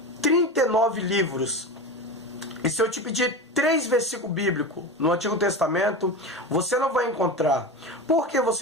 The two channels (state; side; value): normal; both; correlation 0.25